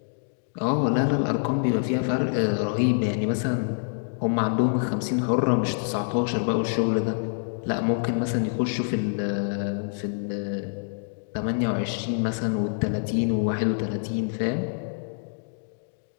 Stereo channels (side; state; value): right; silent; digital silence